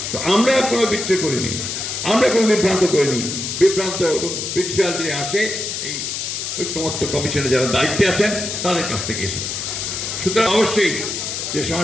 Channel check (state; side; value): noise; left; hiss, 4 dB below the sound